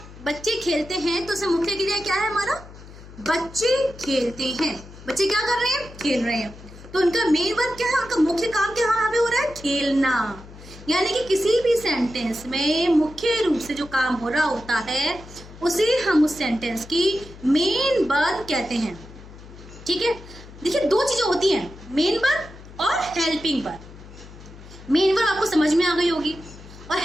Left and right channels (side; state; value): left; noise; hum, 18 dB below the sound